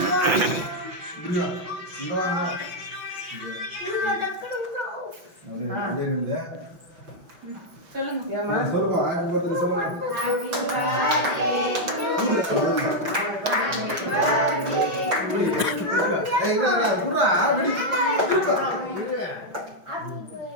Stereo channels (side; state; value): left; late; 5.6 ms